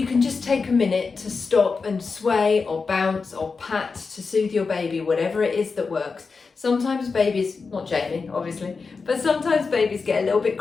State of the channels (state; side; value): quieter; right; 4.7 dB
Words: can just take a minute to stop and sway or bounce or pat to soothe your baby, whatever it is that works. Sometimes babies, not Jamie obviously, but sometimes babies get a little bit